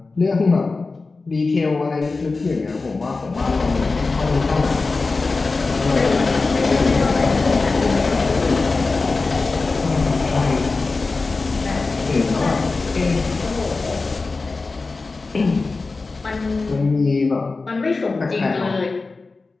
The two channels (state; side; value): quieter; right; 3.8 dB